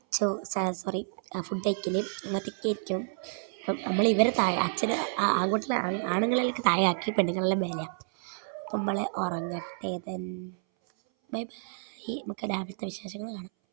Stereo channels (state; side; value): silent; left; 58 dB below the other